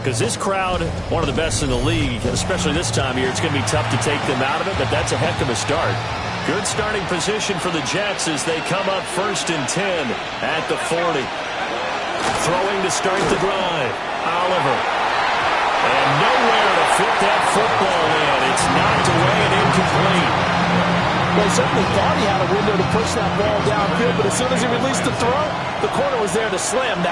Because this crowd, one of the best in the league, especially this time of year, it's going to be tough to take them out of it, but that's a heck of a start. Good starting position for the Jets as they come up 1st and 10 at the 40. Throwing to start the drive. Oliver. And nowhere to fit that football in. It's knocked away and incomplete. Well, he certainly thought he had a window to push that ball downfield, but as soon as he released the throw, the corner was there to slam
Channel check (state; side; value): identical; both; correlation 1.00